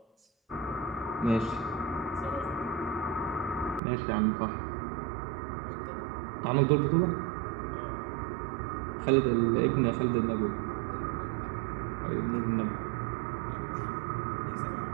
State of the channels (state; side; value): drops out; left; at 3.8 s